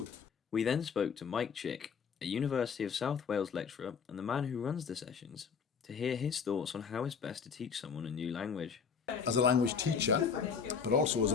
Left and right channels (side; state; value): right; quieter; 6.3 dB